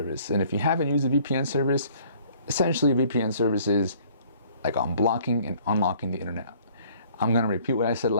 and if you haven't used a VPN service, essentially a VPN service is like unblocking and unlocking the internet. I'm gonna repeat what I said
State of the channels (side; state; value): both; inverted; correlation -0.57